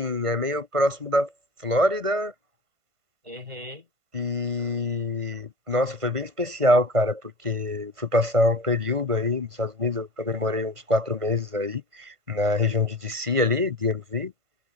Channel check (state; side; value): late; left; 1.5 ms